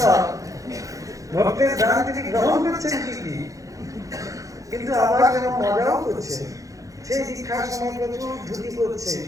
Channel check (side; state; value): left; late; 0.16 ms